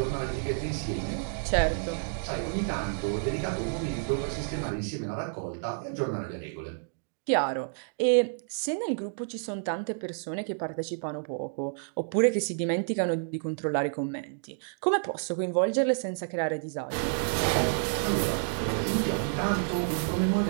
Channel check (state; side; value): silent; left; digital silence